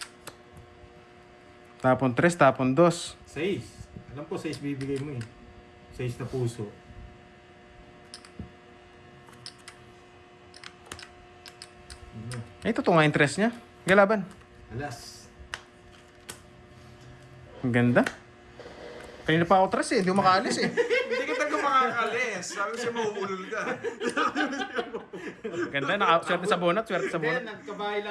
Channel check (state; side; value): identical; both; correlation 1.00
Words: Tapon 3, tapon 2. 6. Alam ko 6 bibigay mo eh. 6 na puso. Ay, ito nga interest niya. Galaban. Alas. Ang ganda. Kanina pa ako tres eh. Hindi ko makaalis eh. Hindi ka talaga makakalis. Sabi siya mauulol ka. Ganda. Swerte sa bonat. Swerte sa Hindi, bonat. nagkabahay